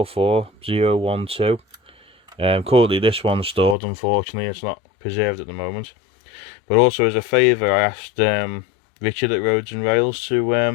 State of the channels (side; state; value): right; drops out; at 3.8 s